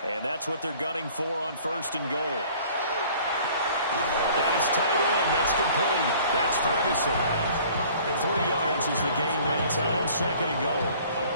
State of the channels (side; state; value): both; inverted; correlation -0.52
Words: and that's what they're gunning for on first and goal. That is tight end. That's complete. That's Ferguson. 3 yards is the gain that time. Second and goal. A